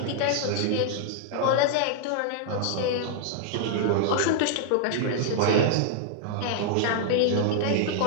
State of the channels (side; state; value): both; different; correlation -0.01